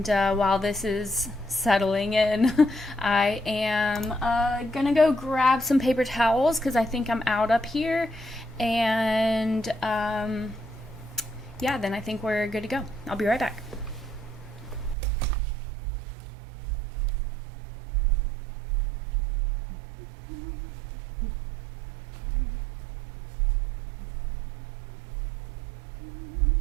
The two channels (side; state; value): left; drops out; at 15.0 s